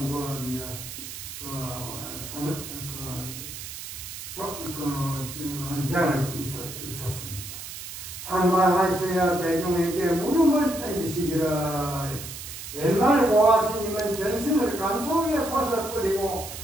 헌장을 있었습니다. 상방하셔야 대중에게 물음을 던지시기를 옛날 보아스님은 전승을 감속에 벗어버리고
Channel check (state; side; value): noise; right; hiss, 10 dB below the sound